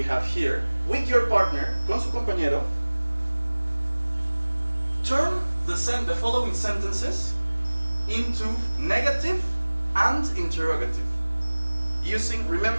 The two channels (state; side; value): inverted; both; correlation -1.00